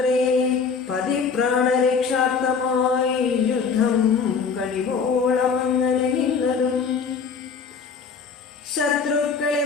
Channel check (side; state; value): right; quieter; 5.6 dB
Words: പതിപ്രാണരക്ഷാർത്ഥമായി യുദ്ധം കഴിവോളമങ്ങനെ നിന്നതും ശത്രുക്കളെ